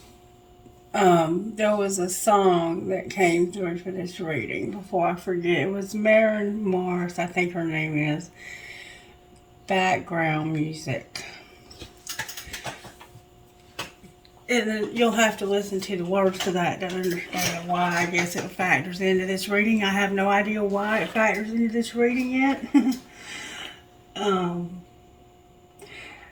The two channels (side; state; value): both; identical; correlation 1.00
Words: There was a song that came through for this reading before I forget. It was Maren Morris, I think her name is, background music. And then you'll have to listen to the words to that to understand why I guess it factors into this reading. I have no idea why it factors into this reading yet. um,